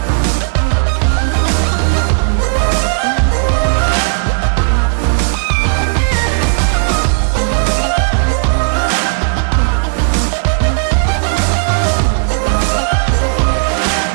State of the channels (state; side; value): silent; left; digital silence